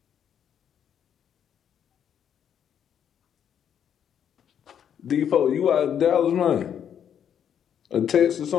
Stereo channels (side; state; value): right; quieter; 8.8 dB